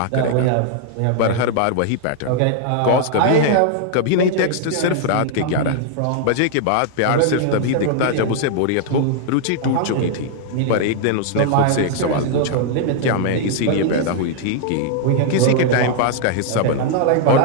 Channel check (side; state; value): both; different; correlation -0.01